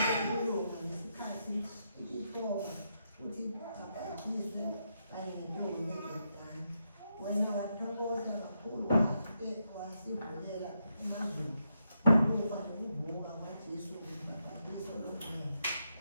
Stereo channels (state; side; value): inverted; both; correlation -0.82